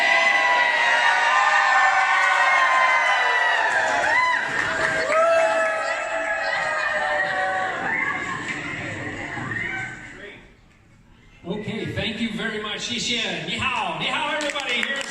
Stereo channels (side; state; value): both; identical; correlation 1.00